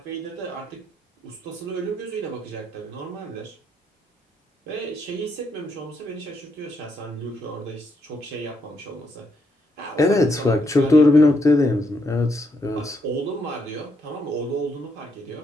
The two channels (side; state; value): both; normal; correlation 0.77